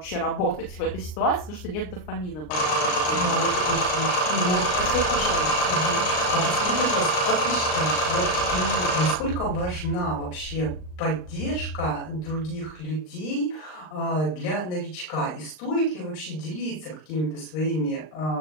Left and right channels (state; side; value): late; right; 39 ms